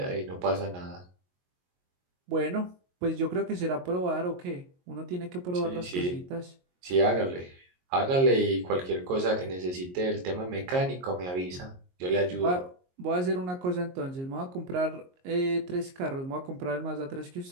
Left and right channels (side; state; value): left; late; 22 ms